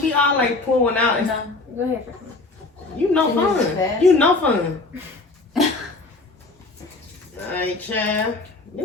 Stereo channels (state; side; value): quieter; right; 3.4 dB